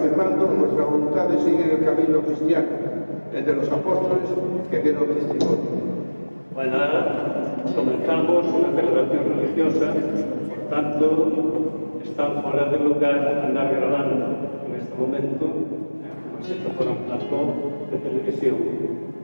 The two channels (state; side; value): inverted; both; correlation -1.00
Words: nuestra voluntad de seguir el camino cristiano, el de los apóstoles que dieron testimonio. Bueno, ahora comenzamos una celebración religiosa, por tanto, está fuera de lugar andar grabando en este momento, como si esto fuera un plató de televisión.